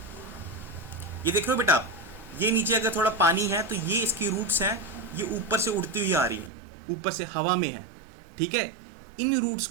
ये देख रहे हो बेटा आप, ये नीचे अगर थोड़ा पानी है तो ये इसकी रूट्स हैं, ये ऊपर से उड़ती हुई आ रही हैं, ऊपर से हवा में है, ठीक है। इन रूट्स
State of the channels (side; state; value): left; drops out; at 6.5 s